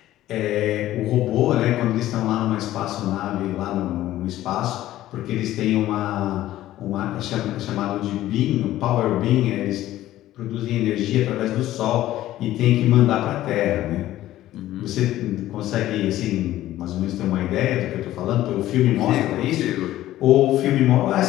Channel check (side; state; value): right; quieter; 14.3 dB